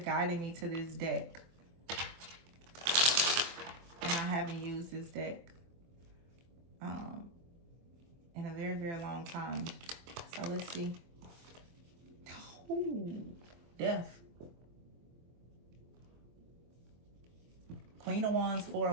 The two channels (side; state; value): left; late; 24 ms